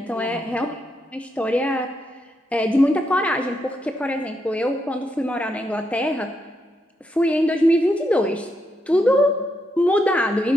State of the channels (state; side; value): normal; both; correlation 0.81